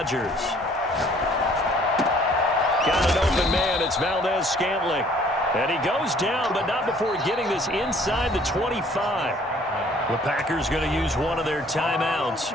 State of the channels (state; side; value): normal; both; correlation 0.58